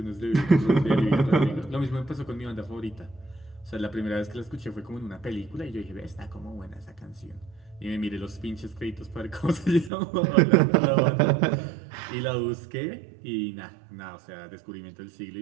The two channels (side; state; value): left; drops out; at 9.9 s